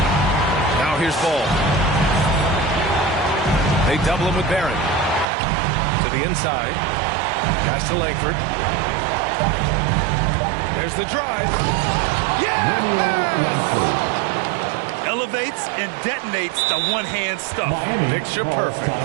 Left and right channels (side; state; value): left; drops out; at 5.2 s